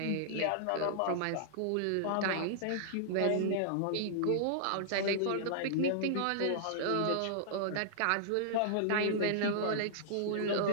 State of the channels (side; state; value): both; different; correlation -0.01